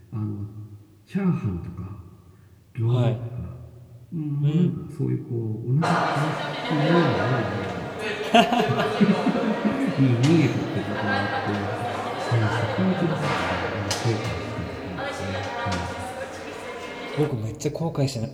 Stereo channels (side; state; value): both; identical; correlation 1.00